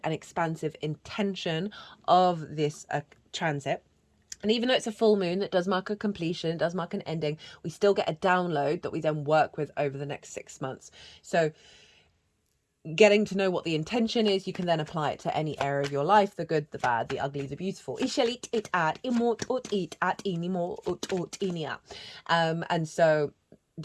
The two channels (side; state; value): both; identical; correlation 1.00